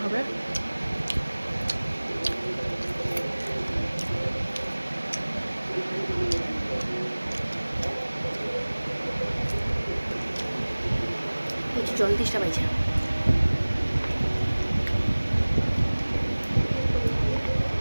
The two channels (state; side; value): inverted; both; correlation -1.00